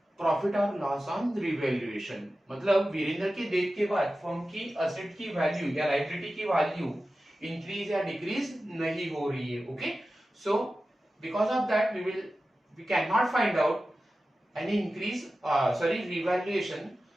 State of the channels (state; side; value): normal; both; correlation 0.94